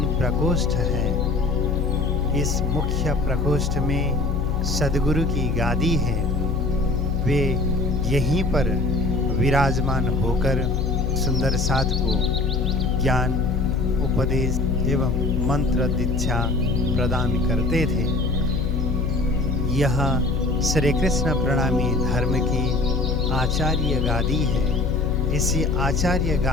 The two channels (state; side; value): noise; left; hum, 2 dB below the sound